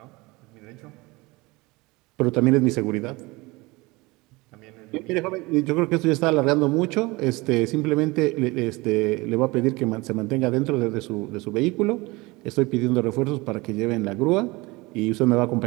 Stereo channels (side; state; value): left; quieter; 23.2 dB